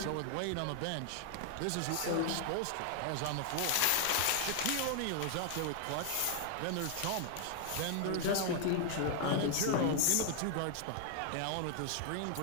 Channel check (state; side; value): different; both; correlation 0.00